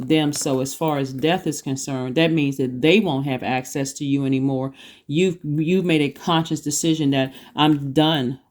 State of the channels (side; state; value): both; identical; correlation 1.00